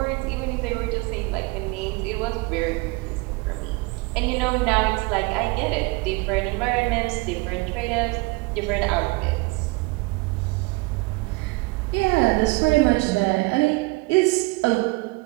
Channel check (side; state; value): left; quieter; 26.1 dB